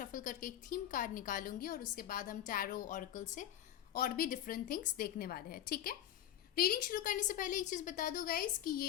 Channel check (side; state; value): right; quieter; 11.3 dB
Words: करके एक थीम कार्ड निकालूंगी और उसके बाद हम टैरो ऑरेकल से और भी डिफरेंट थिंग्स देखने वाले हैं। ठीक है, रीडिंग शुरू करने से पहले एक चीज़ बता दो गाइस कि ये